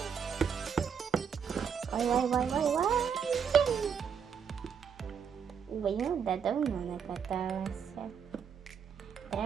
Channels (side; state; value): left; quieter; 7.2 dB